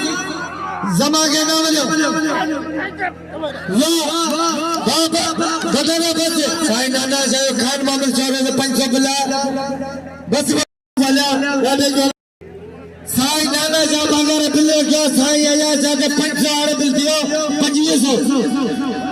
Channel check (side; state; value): both; identical; correlation 1.00